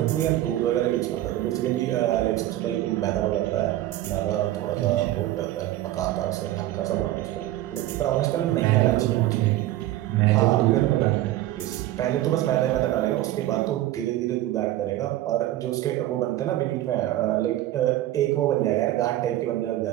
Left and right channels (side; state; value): left; quieter; 14.6 dB